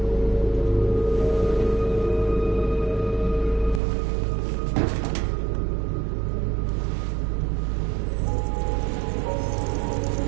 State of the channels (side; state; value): left; drops out; at 3.8 s